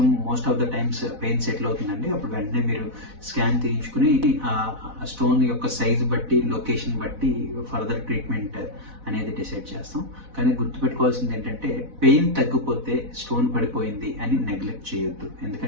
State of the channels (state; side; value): late; left; 4.1 ms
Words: most of the times pain settle అవుతుందండి. అప్పుడు వెంటనే మీరు స్కాన్ తీయించుకుని ఆ స్టోన్ యొక్క సైజ్ బట్టి, లొకేషన్ బట్టి ఫర్దర్ ట్రీట్మెంట్ అనేది డిసైడ్ చేస్తాం. కానీ గుర్తుపెట్టుకోవాల్సింది ఏంటంటే పెయిన్ తగ్గిపోతే స్టోన్ పడిపోయింది అని నెగ్లెక్ట్ చేయొద్దు.